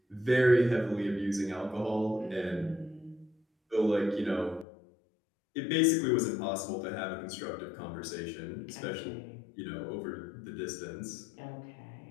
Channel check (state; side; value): drops out; right; at 4.7 s